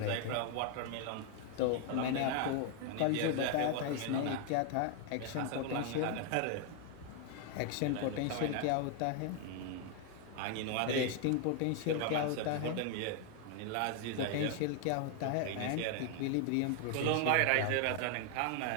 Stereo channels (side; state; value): both; different; correlation 0.01